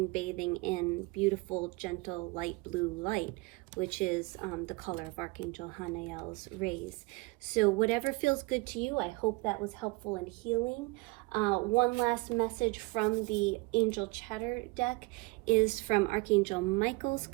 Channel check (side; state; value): left; quieter; 25.0 dB